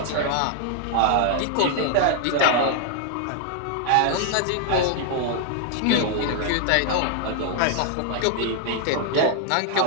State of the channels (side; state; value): both; different; correlation 0.00